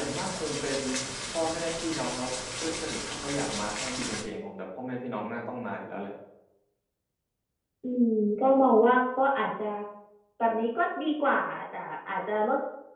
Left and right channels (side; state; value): both; identical; correlation 1.00